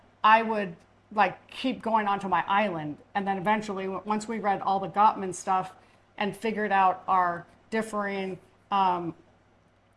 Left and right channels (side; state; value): both; identical; correlation 1.00